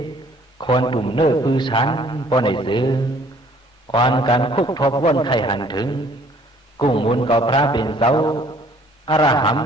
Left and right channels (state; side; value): normal; both; correlation 0.58